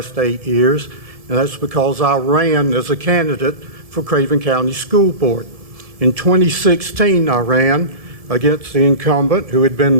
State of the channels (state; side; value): late; left; 1.7 ms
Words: 8 years, and that's because I ran as a candidate for Craven County School Board. In 2016, I ran against the incumbent who had been